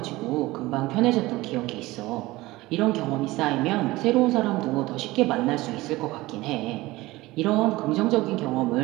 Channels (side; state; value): left; quieter; 19.4 dB